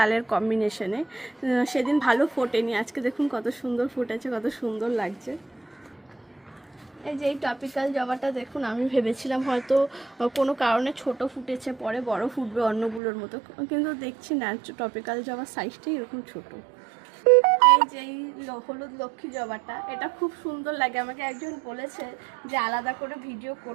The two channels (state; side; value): drops out; left; at 13.0 s